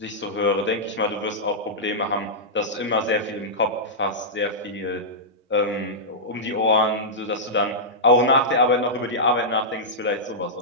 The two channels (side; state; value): both; normal; correlation -0.11